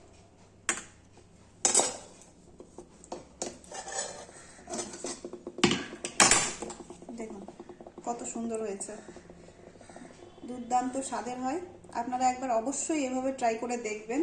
দেখুন কত সুন্দর হয়েছে, দুর্দান্ত স্বাদের হয়। আপনারা একবার অবশ্যই এভাবে ট্রাই করে দেখবেন,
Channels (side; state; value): both; identical; correlation 1.00